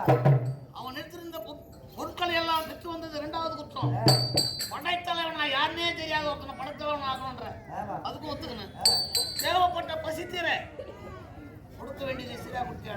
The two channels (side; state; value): both; identical; correlation 1.00